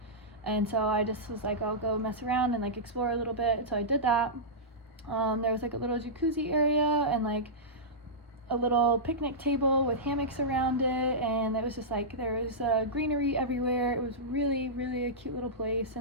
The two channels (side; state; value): both; normal; correlation -0.15